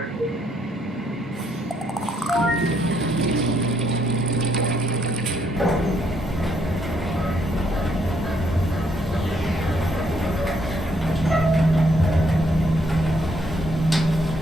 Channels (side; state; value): both; normal; correlation 0.72